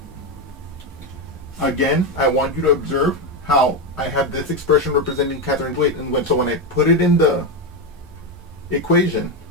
Again, I want you to observe how I have this expression representing Catherine's weight, and so when I put it in the equation,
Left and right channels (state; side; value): normal; both; correlation 0.10